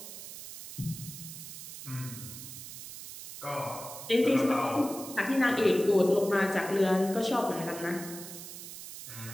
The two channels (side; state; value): right; noise; hiss, 11 dB below the sound